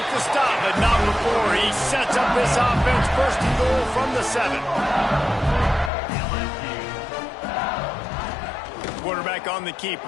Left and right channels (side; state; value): right; drops out; at 5.9 s